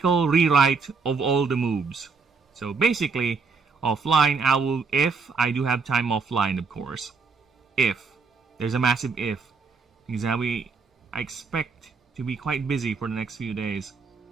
rewrite of all the moves. So basically, offline, I will, if I do have time offline, of course. If. There's a massive if. Because I expect to be quite busy for the next few days.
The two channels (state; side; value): quieter; left; 4.8 dB